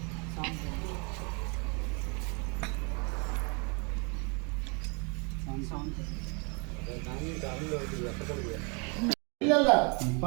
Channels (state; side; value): quieter; left; 33.6 dB